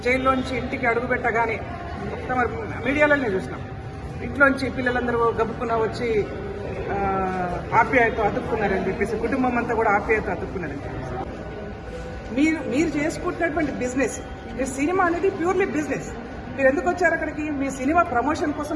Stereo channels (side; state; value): both; identical; correlation 1.00